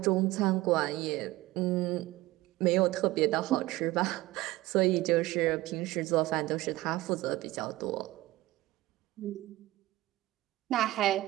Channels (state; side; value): quieter; left; 18.0 dB